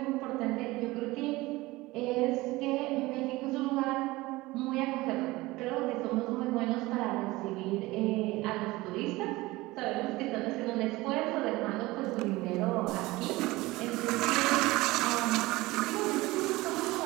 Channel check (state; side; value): quieter; left; 20.1 dB